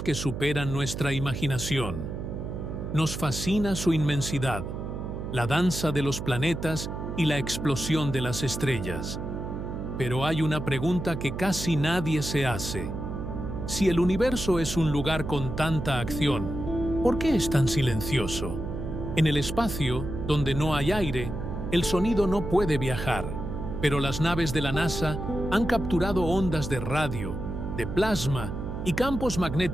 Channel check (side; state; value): right; noise; hum, 6 dB below the sound